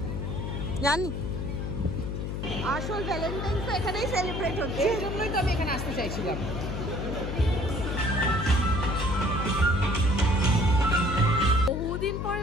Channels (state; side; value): noise; left; hum, 4 dB below the sound